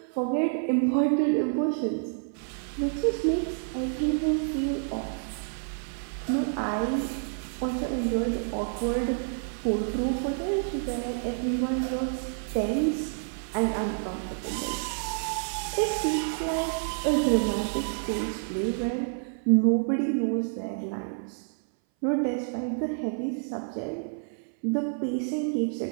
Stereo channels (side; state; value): left; silent; 59 dB below the other